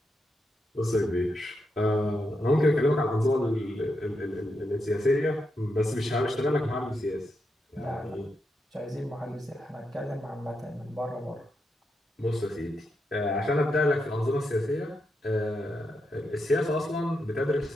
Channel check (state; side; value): normal; both; correlation 0.84